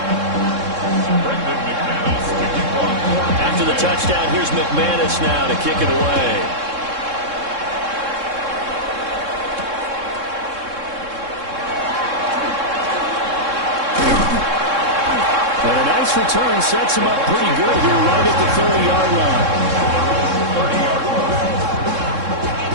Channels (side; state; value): left; late; 3.7 ms